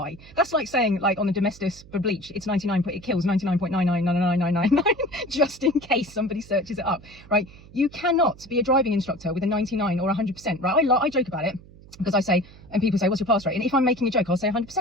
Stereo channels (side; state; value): right; noise; hum, 21 dB below the sound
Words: That's like saying, like on the Domestos for bleach, it's 99. It kills 99.9999999 just in case somebody searches it up. Right? You cannot be a driving instructor with a 99 or 100%. Right? I joke about it. Because I say, and people say, what's your pass rate? And if I'm making a joke, I'll say